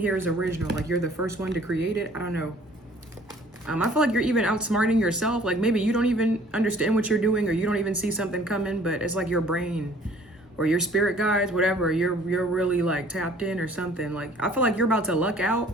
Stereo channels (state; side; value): normal; both; correlation 0.55